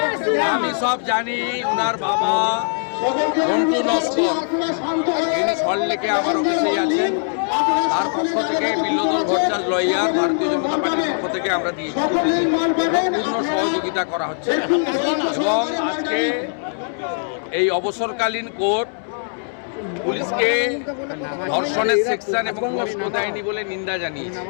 আমি সব জানি, ওনার বাবা মন্টু নস্কর তিনি সল্টলেকে আমার অফিসেই আছেন। তার পক্ষ থেকে বিল্লদল ভট্টাচার্য লয়ার ভারতীয় জনতা পার্টির পক্ষ থেকে আমরা দিয়েছি, পূর্ণ সহযোগিতা করা হচ্ছে। এবং আজকে এই অবসরকালীন কোর্ট পুলিশকে ধর্ষণের সেকশন এবং কষ্ট দেয়নি বলে নিন্দা জানিয়েছে।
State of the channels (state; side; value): silent; right; 65 dB below the other